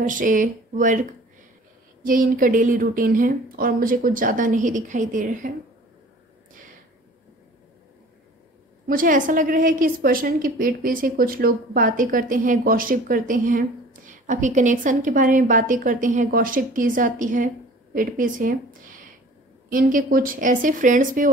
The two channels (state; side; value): normal; both; correlation 0.46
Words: से वर्क, ये इनका डेली रूटीन है और मुझे कुछ ज़्यादा नहीं दिखाई दे रहा है। मुझे ऐसा लग रहा है कि इस पर्सन की पीठ पीछे कुछ लोग बातें करते हैं, गॉसिप करते हैं, आपकी कनेक्शन के बारे में बातें करते हैं, गॉसिप की जाती है पीठ पीछे। इनके कुछ ऐसे फ्रेंड्स भी